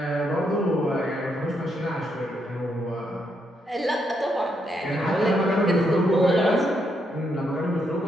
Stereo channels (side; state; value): both; normal; correlation 0.78